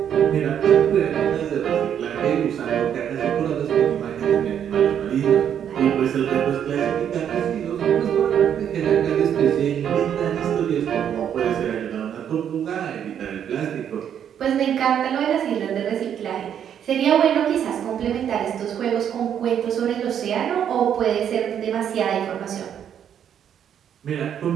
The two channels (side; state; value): left; quieter; 9.1 dB